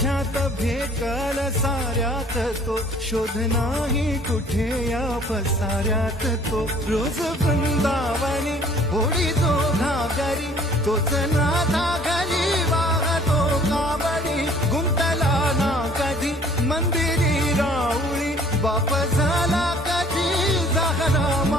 भेटल साऱ्यात तो शोध नाही कुठे या पसाऱ्यात तो रोज वृंदावनी होडी तो घागरी तोच नाथा घरी वाहतो कावडी गुंतला ना कधी मंदिरी राऊळी बाप झाला कधी झाला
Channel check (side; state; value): both; normal; correlation 0.55